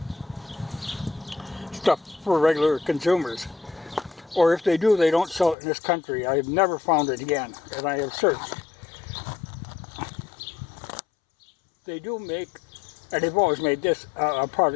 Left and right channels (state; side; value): drops out; right; at 5.6 s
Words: stuff for regular consumers. Or if they do, they don't sell it in this country. I have never found it again, and I have searched. They do make, and they've always made this, a